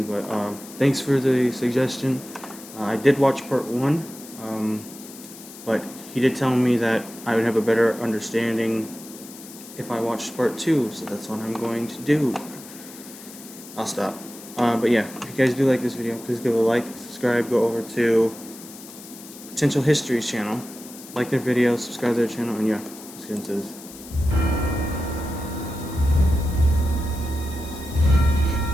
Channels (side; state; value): left; noise; hiss, 16 dB below the sound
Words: but thanks for the suggestion. I did watch Part 1, but he did tell me that I would have a better understanding if I watched Part 2, so that's what I'm going to do. I'll stop. But yeah, if you guys do like this video, please give it a like, subscribe, go over to Potential History's channel, like their videos, subscribe to their channel, and yeah, let's get into this.